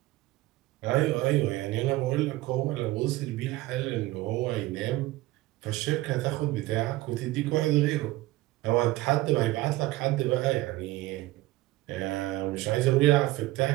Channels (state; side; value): quieter; left; 17.9 dB